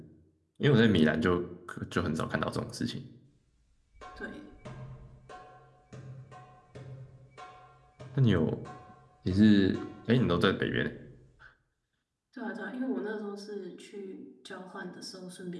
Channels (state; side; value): identical; both; correlation 1.00